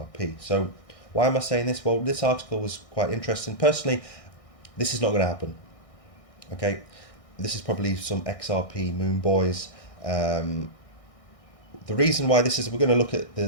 So why am I saying this? Well, this article was quite interesting. Personally, this is not going to happen. Okay. This is probably some XRP moon boys. The reason why this is, we're going to look at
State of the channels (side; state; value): right; late; 1.6 ms